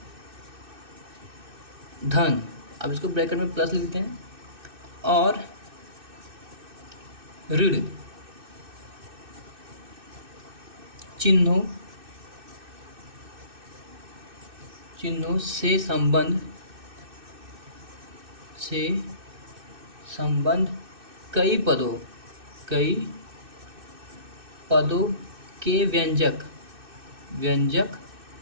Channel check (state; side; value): late; left; 2.6 ms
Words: धन, अब इसको ब्रैकेट में प्लस लिख देते हैं, और ऋण चिन्हों से संबंध कई पदों के व्यंजक